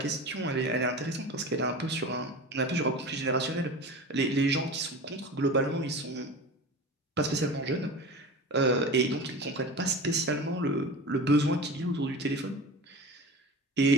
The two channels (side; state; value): both; normal; correlation 0.32